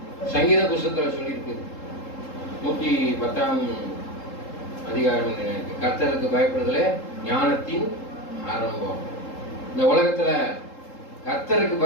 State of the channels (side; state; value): right; late; 3.7 ms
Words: சங்கீத புஸ்தகத்துல சொல்லியிருக்கு. 110ஆம் அதிகாரம், கர்த்தருக்கு பயப்படுதலே ஞானத்தின் ஆரம்பம். இந்த உலகத்துல கர்த்தருக்கு